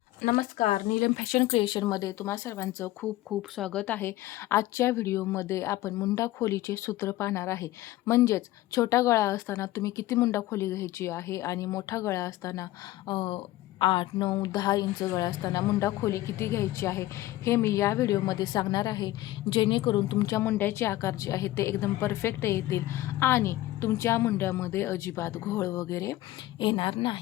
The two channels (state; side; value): quieter; right; 16.3 dB